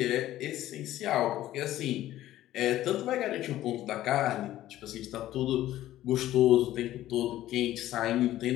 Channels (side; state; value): right; quieter; 14.1 dB